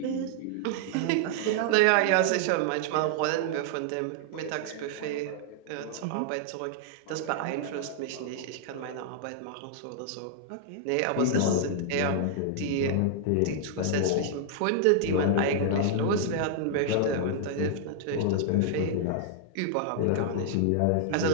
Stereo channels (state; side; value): different; both; correlation -0.01